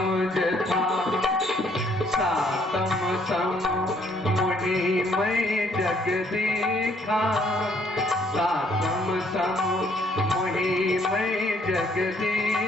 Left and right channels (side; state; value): both; normal; correlation 0.66